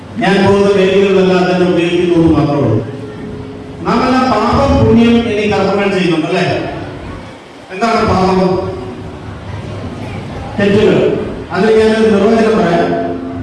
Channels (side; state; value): both; identical; correlation 1.00